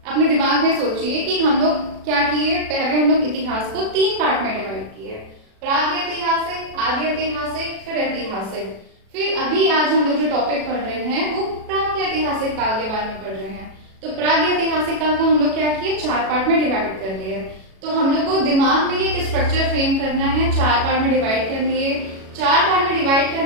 दिमाग में सोचिए कि हम लोग क्या किए। पहले हम लोग इतिहास को 3 पार्ट में डिवाइड किए, प्रागैतिहासिक, आदि ऐतिहासिक, फिर ऐतिहासिक। फिर अभी आज हम लोग जो टॉपिक पढ़ रहे हैं वो प्रागैतिहासिक काल के बारे में पढ़ रहे हैं। तो प्रागैतिहासिक काल को हम लोग क्या किए, 4 पार्ट में डिवाइड कर लिए। तो हम लोग को दिमाग में एक स्ट्रक्चर फ्रेम करना है, 4 पार्ट में डिवाइड कर लिए। 4 पार्ट में डिवाइड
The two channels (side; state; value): left; late; 37 ms